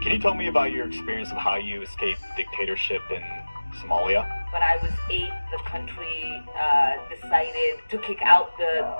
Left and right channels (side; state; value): both; inverted; correlation -1.00